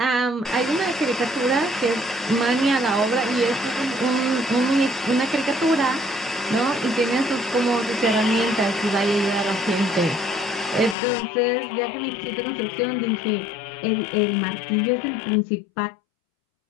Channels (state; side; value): drops out; right; at 11.0 s